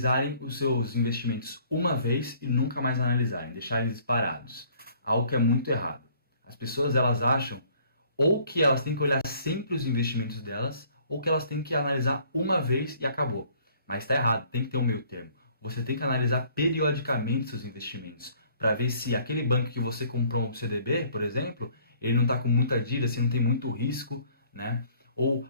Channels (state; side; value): inverted; both; correlation -0.59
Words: os seus investimentos uma vez e nunca mais analisarem, deixar eles parados. Algo que é muito errado. As pessoas, elas acham ou que elas têm que olhar sempre os investimentos delas, ou que elas têm que analisar uma vez e acabou. Mas está errado, tem que ter um meio termo. Você tem que analisar periodicamente seus investimentos, para ver se aquele banco que você comprou um CDB, por exemplo, ele não está com muita dívida, se não tem muito risco, né? Ou